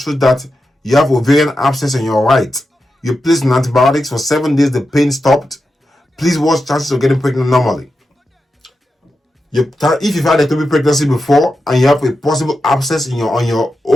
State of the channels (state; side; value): normal; both; correlation 0.89